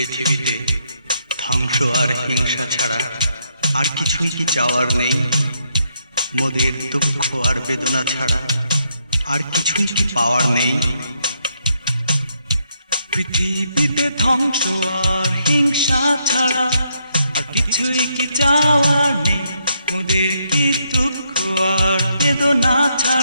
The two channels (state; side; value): inverted; both; correlation -0.76